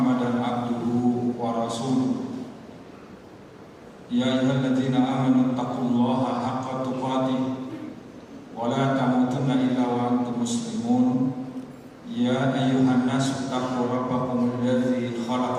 abduhu wa rasuluh. Ya ayyuhalladzina amanu taqullaha haqqa tuqatih wa la tamutunna illa wa antum muslimun. Ya ayyuhan nasu taqu rabbakum alladzi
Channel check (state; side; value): identical; both; correlation 1.00